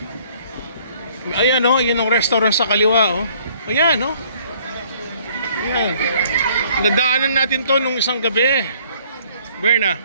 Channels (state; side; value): inverted; both; correlation -0.60